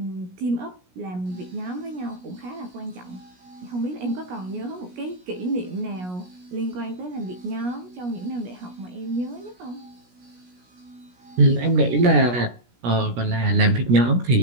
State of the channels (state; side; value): late; left; 17 ms